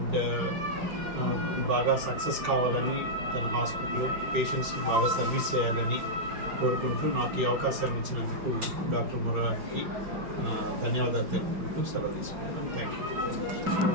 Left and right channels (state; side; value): late; left; 5.3 ms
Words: బాగా సక్సెస్ కావాలని, తన హాస్పిటల్ పేషెంట్స్కి బాగా సర్వీస్ చేయాలని కోరుకుంటూ నాకు ఈ అవకాశాన్ని ఇచ్చినందుకు డాక్టర్ మురారికి ధన్యవాదాలు తెలుపుకుంటూ సెలవు తీసుకున్నాను. Thank you.